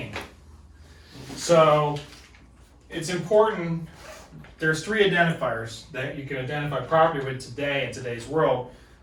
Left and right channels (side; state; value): both; identical; correlation 1.00